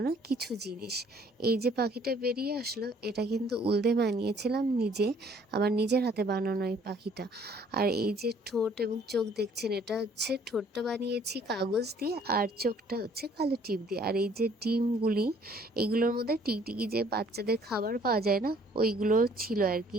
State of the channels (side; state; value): both; normal; correlation 0.59